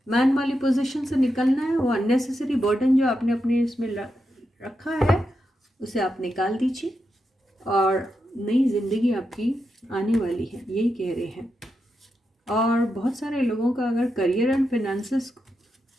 मैन वाली पोजीशन से निकलना है। वो अननेसेसरी बर्डन जो आपने अपने इसमें रखा है उसे आप निकाल दीजिए और नई ज़िंदगी आपकी आने वाली है, यही कह रहे हैं। और बहुत सारे लोगों का अगर करियर एंड फिनेंसेस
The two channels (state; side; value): normal; both; correlation 0.86